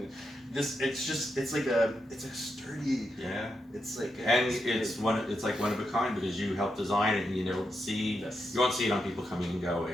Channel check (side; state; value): both; normal; correlation 0.84